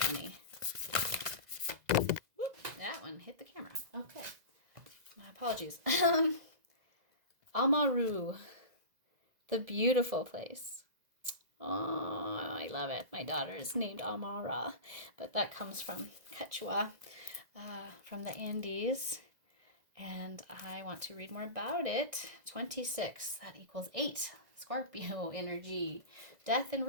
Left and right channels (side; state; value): left; late; 2.0 ms